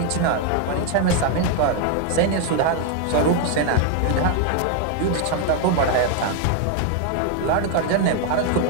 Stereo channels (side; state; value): both; different; correlation 0.01